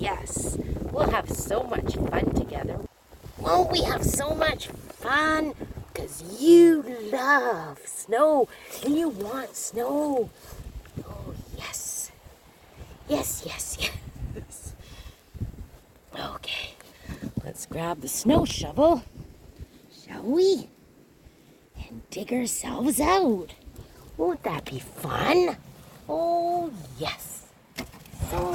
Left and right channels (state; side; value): identical; both; correlation 1.00